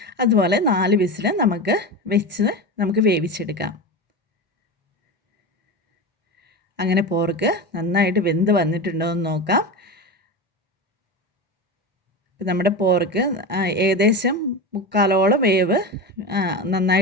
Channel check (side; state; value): both; normal; correlation 0.23